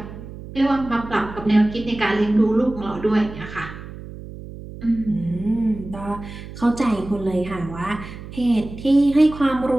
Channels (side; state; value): right; noise; hum, 13 dB below the sound